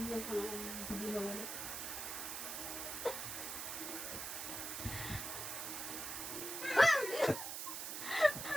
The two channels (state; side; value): noise; right; hiss, 4 dB below the sound